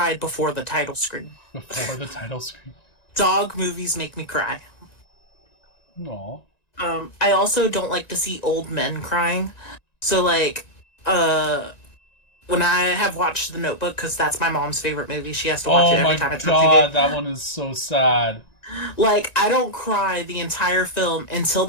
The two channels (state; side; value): late; right; 1.9 ms